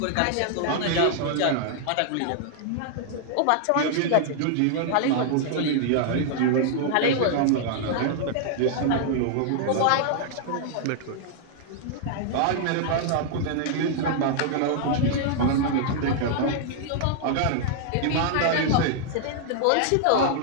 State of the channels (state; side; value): different; both; correlation -0.01